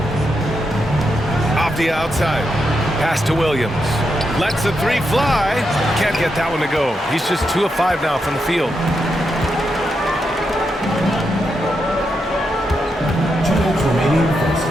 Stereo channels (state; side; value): normal; both; correlation 0.84